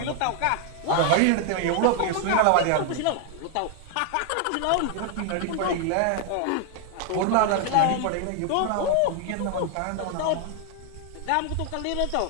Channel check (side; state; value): both; different; correlation 0.00